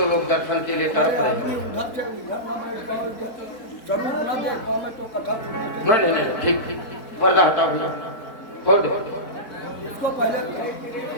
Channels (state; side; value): late; right; 4.2 ms